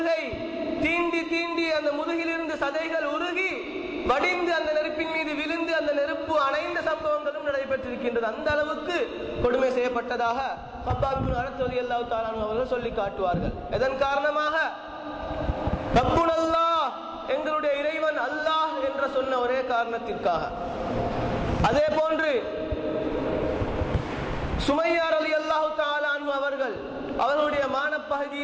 தீண்டி தீண்டி அந்த முதுகிலிருந்து சதைகள் உருகி வடிந்து அந்த நெருப்பின் மீது விழுந்து அந்த நெருப்பு அணைந்த சம்பவங்களும் நடைபெற்றிருக்கின்றது. அந்த அளவுக்கு கொடுமை செய்யப்பட்டதாக ஹப்பாப் இப்னு அரத் ரலியல்லாஹு தஆலா அன்ஹு அவர்கள் சொல்லி காட்டுவார்கள். இதன் காரணமாக ரப்புனல்லாஹ், எங்களுடைய இறைவன் அல்லாஹ் என்ற சொன்ன ஒரே காரணத்திற்காக. அதே போன்று சுமையா ரலியல்லாஹு தஆலா அன்ஹு அவர்களுடைய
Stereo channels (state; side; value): identical; both; correlation 1.00